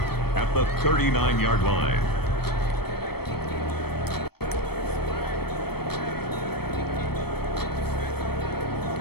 at the 39-yard line.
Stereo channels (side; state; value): right; late; 0.96 ms